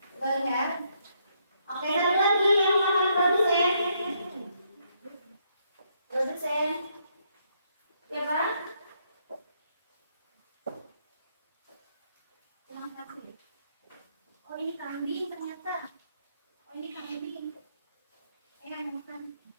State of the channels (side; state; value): both; inverted; correlation -0.74